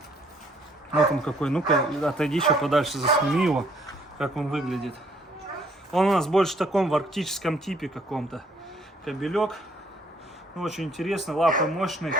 Вот он какой. Ну-ка, отойди еще подальше, засними его, как он выглядит. Он у нас больше в таком в арктическом типе каком-то. Кобелек. Ну, очень интересно, лапы мощные.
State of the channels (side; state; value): both; normal; correlation 0.64